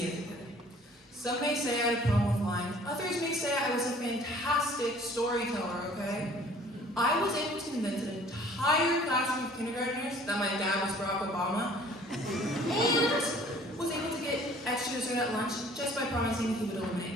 as a kid. Some may say I had a problem with lying. Others may say I was a fantastic storyteller, okay? I was able to convince an entire classroom of kindergartners that my dad was Barack Obama, and was able to get extra dessert at lunch just by promising he would eliminate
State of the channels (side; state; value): both; normal; correlation 0.53